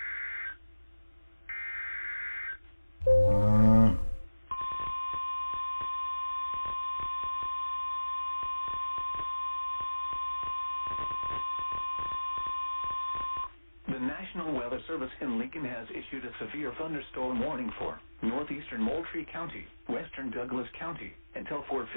The National Weather Service in Lincoln has issued a severe thunderstorm warning for northeastern Moultrie County, western Douglas County, until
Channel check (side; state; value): both; inverted; correlation -1.00